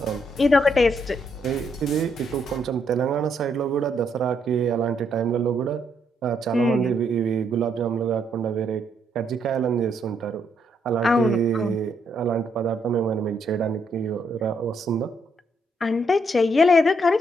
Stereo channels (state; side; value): normal; both; correlation 0.74